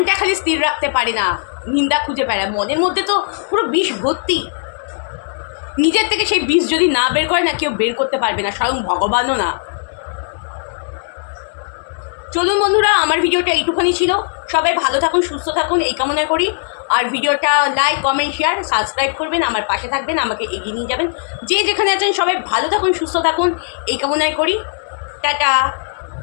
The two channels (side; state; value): right; silent; digital silence